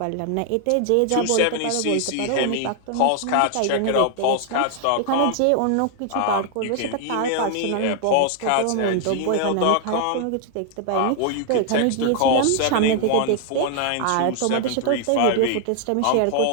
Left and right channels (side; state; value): both; different; correlation 0.00